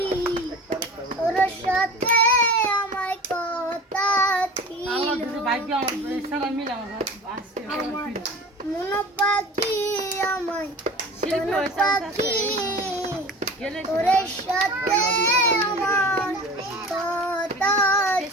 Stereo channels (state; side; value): normal; both; correlation 0.38